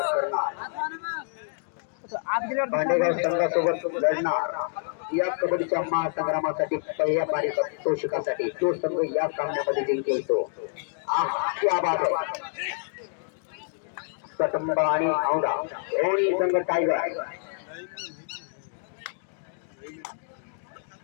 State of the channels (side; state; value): right; silent; digital silence